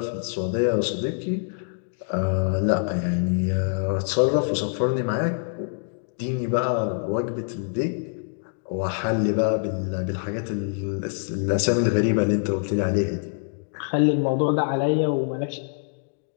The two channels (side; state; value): right; silent; digital silence